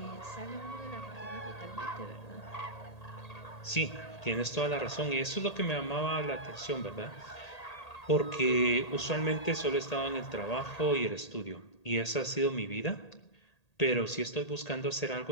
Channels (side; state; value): right; late; 1.8 ms